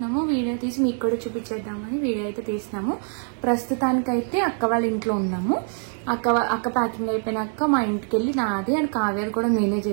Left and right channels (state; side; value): silent; left; 56 dB below the other